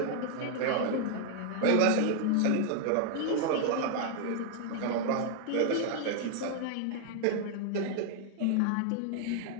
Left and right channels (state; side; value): different; both; correlation 0.00